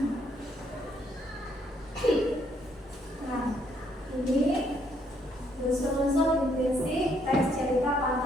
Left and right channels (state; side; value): normal; both; correlation 0.70